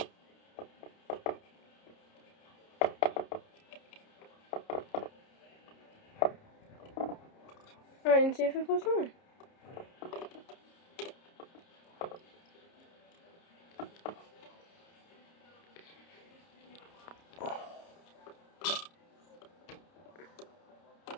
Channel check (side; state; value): right; late; 30 ms